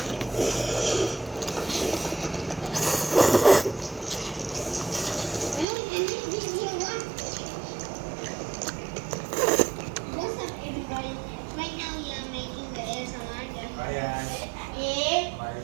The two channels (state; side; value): drops out; left; at 5.7 s